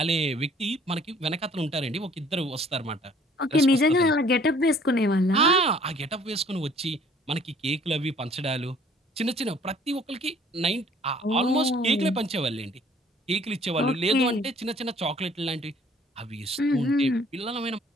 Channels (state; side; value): normal; both; correlation 0.56